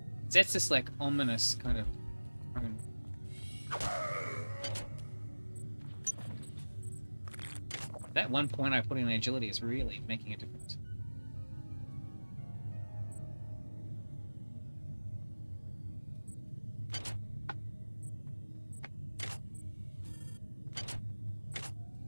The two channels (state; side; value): inverted; both; correlation -1.00